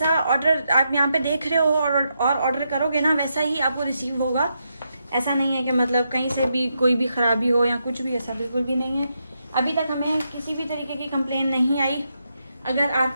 ऑर्डर आप यहाँ पे देख रहे हो और ऑर्डर करोगे ना, वैसा ही आपको रिसीव होगा। ऐसा नहीं है कि मतलब कहीं से भी कोई भी खराबी हो या कुछ भी, ऐसा बिल्कुल भी नहीं है। अभी तक हमें किसी भी तरीके की कंप्लेन नहीं आई। अगर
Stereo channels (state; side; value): inverted; both; correlation -0.82